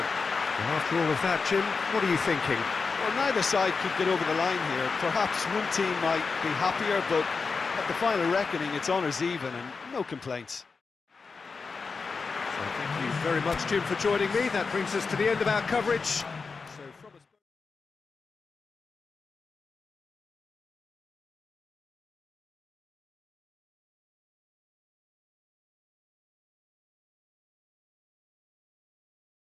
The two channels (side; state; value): right; quieter; 4.7 dB